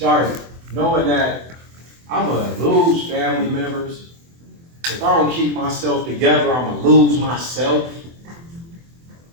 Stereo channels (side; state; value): left; late; 24 ms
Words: knowing that I'm going to lose family members. If I don't keep myself together, I'm going to lose myself.